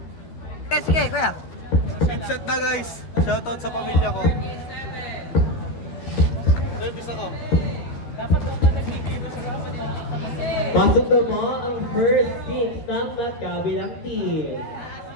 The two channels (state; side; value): late; right; 13 ms